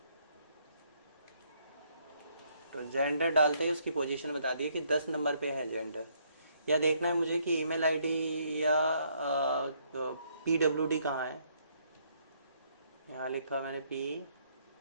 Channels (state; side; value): inverted; both; correlation -0.70